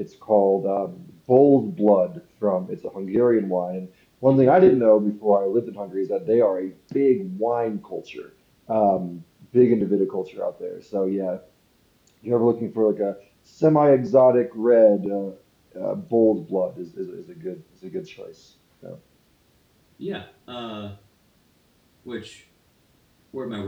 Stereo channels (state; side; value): identical; both; correlation 1.00